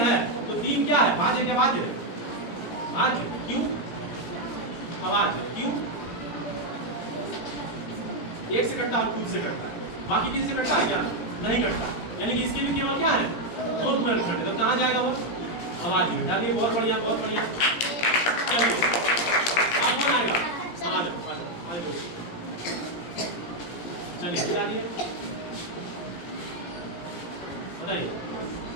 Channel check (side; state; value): right; late; 17 ms